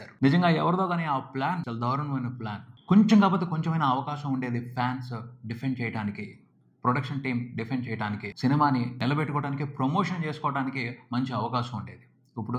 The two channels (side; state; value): both; identical; correlation 1.00